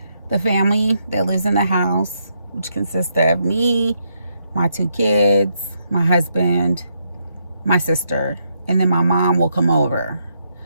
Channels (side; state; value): both; inverted; correlation -0.78